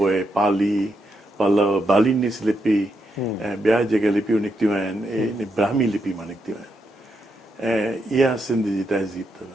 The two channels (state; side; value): normal; both; correlation 0.81